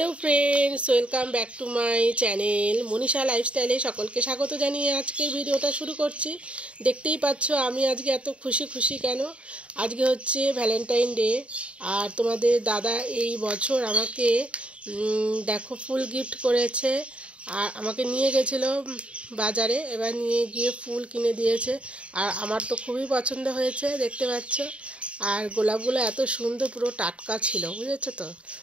friends, welcome back to my channel Manisha লাইফস্টাইলে সকলকে স্বাগত জানিয়ে আজকের ভিডিওটা শুরু করছি। দেখতেই পাচ্ছ আমি আজকে এত খুশি কেন। আজকে হচ্ছে ভ্যালেন্টাইন ডে, আর তোমাদের দাদা এই বছর আমাকে দেখো ফুল গিফট করেছে। আর আমাকে নিয়ে গেছিলো বাজারে, এবার নিয়ে গিয়ে ফুল কিনে দিয়েছে। আর আমার তো খুবই পছন্দ হয়েছে, দেখতে পাচ্ছ। আর গোলাপগুলো এত সুন্দর, পুরো টাটকা ছিল, বুঝেছো তো,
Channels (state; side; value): late; left; 0.061 ms